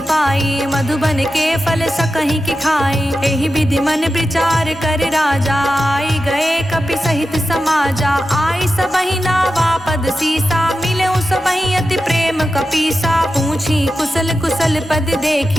पाई, मधुबन के फल सकहि कि खाई। एहि विधि मन विचार कर राजा, आई गए कपि सहित समाजा। आई सबहि नावा पद सीसा, मिले सबहि अति प्रेम कपीसा। पूछी कुशल कुशल पद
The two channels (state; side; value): normal; both; correlation 0.91